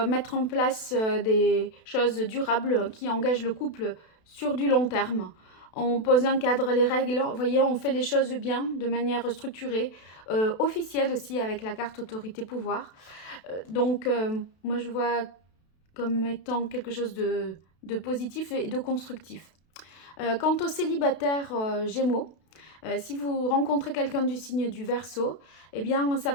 mettre en place des choses durables qui engagent le couple sur du long terme. On pose un cadre, les règles, vous voyez, on fait les choses bien, de manière structurée, officielle aussi avec la carte autorité pouvoir. Donc, moi je vois comme étant quelque chose de positif et de constructif. Quant aux célibataires Gémeaux, si vous rencontrez quelqu'un du signe du Verseau, eh bien, ça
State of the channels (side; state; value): right; late; 32 ms